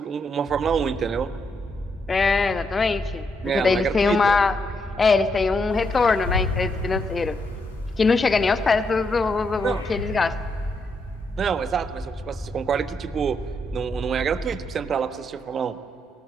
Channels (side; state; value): both; normal; correlation 0.79